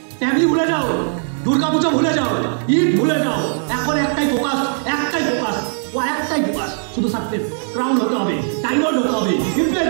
ফ্যামিলি ভুলে যাও, দুর্গাপূজা ভুলে যাও, ঈদ ভুলে যাও। এখন একটাই ফোকাস, শুধু সাকসেস। ক্রাউন হতে হবে, ডায়মন্ড হতে হবে,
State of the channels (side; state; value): left; silent; digital silence